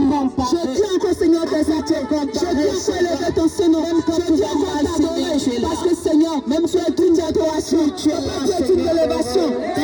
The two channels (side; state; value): both; identical; correlation 1.00